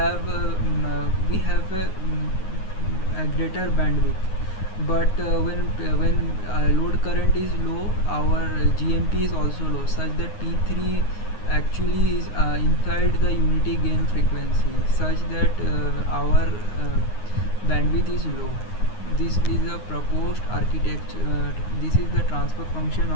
a greater bandwidth. But when load current is low, our GMP is also low, such that P3 actually is inside the unity gain frequency, such that our bandwidth is low. This is a proposed architecture. This is the transfer function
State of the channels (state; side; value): late; right; 9.6 ms